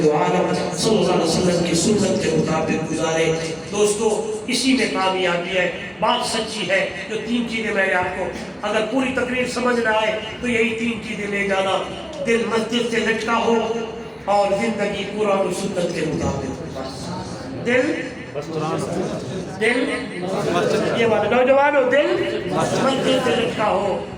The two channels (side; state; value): both; identical; correlation 1.00